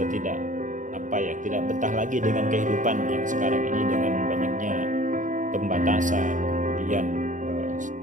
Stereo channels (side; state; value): left; late; 0.37 ms